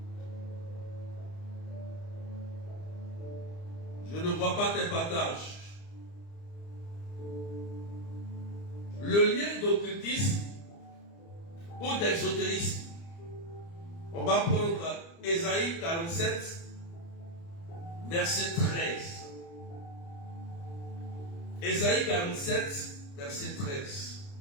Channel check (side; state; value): right; late; 29 ms